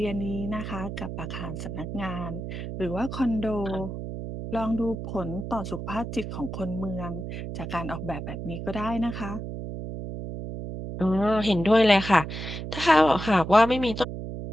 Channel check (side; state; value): right; noise; hum, 7 dB below the sound